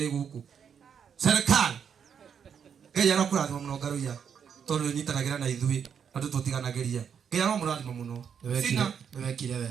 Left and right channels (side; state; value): left; quieter; 7.5 dB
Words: iguku serikali Ngai arakurathima muno Ngaruia tondu nyitanagira na ithui andu tutiganagiria Ngai aramurathima muno sina wekire